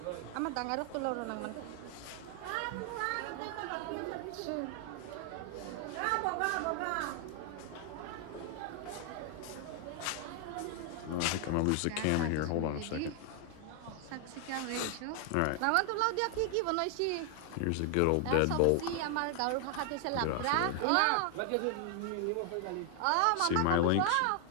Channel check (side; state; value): both; different; correlation 0.00